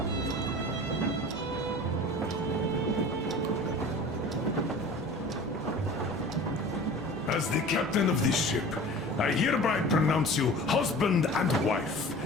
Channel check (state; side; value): normal; both; correlation 0.40